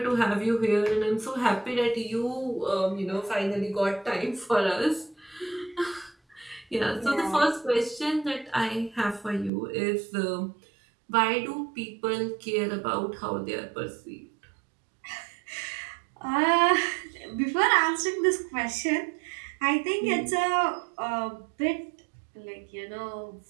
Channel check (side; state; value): left; drops out; at 9.5 s